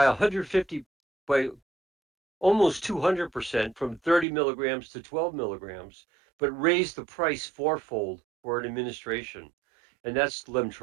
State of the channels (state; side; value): drops out; left; at 4.2 s